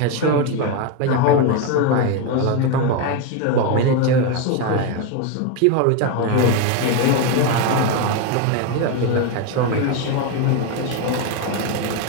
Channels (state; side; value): different; both; correlation 0.02